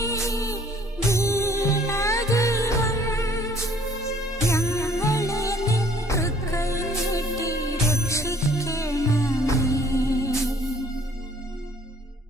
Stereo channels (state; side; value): normal; both; correlation 0.57